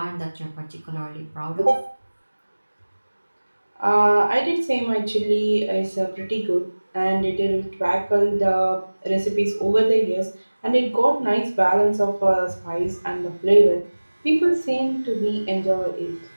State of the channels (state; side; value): inverted; both; correlation -1.00